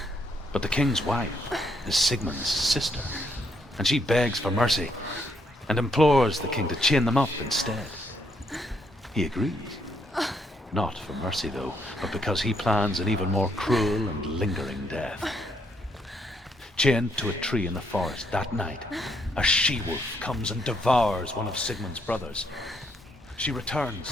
But the king's wife is Sigmund's sister, and she begs for mercy and implores the king to chain them up instead. He agrees. Not for mercy, though, but because he plans an even more cruel and lingering death. Chained to a tree in the forest that night, a she-wolf comes and devours one of Sigmund's brothers. She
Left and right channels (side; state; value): both; normal; correlation 0.74